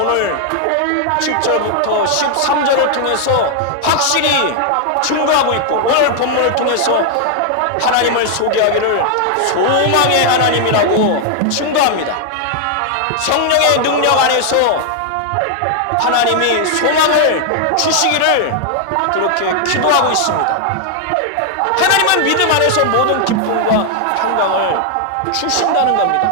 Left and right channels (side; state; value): both; different; correlation 0.00